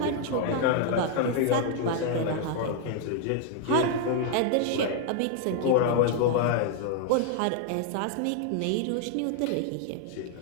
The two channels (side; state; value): both; different; correlation 0.00